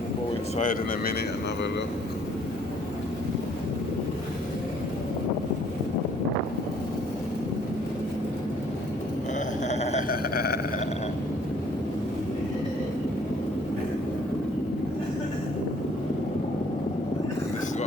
We'll go inside in a minute and have a look. This is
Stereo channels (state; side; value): normal; both; correlation 0.61